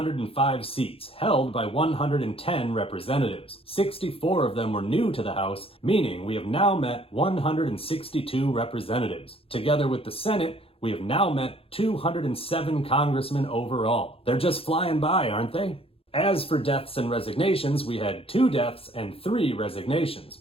seats, held by 110 representatives. 64 of them were new to the House, meaning we have now met 162 representatives. Together with the Senate, we have now met 207 congressmen overall. They're just flying by, aren't they? As for deaths and resignations, we had 2 deaths and 3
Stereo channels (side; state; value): right; late; 0.27 ms